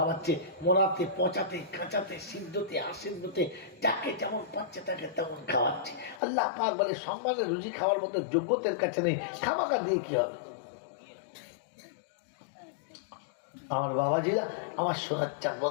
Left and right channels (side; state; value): right; drops out; at 6.2 s